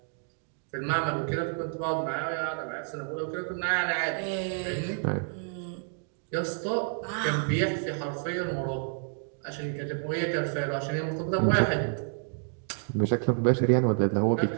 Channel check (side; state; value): left; silent; 58 dB below the other